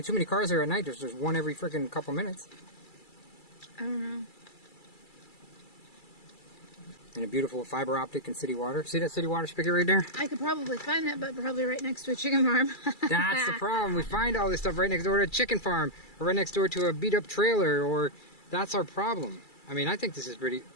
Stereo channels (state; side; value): late; right; 2.3 ms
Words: too many cars there at night. There's one every freaking couple minutes. I don't know. And a beautiful fiber optic and city water. See that city water spigot right there? I could probably find that, but probably right next to a chicken farm. That's the problem. We find all this stuff right next door to a chicken farm, or right next door to a beat up trailer, or that's our problem. I mean, I think this is pretty,